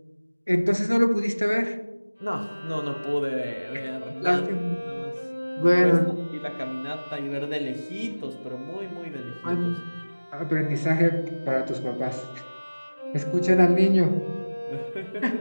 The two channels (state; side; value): inverted; both; correlation -1.00